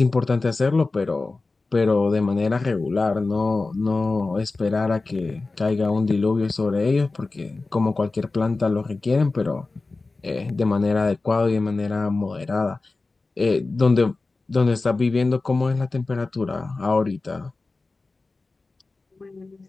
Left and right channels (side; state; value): right; quieter; 3.6 dB